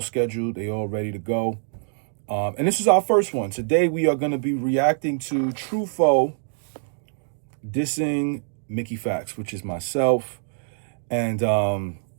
scheduled. They all ready to go. And this is our first one. Today, we are going to be reacting to Tru Foe dissing Mickey Factz, which is myself. And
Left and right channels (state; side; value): silent; left; digital silence